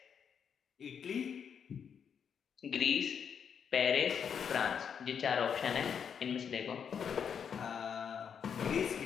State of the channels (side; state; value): right; quieter; 7.4 dB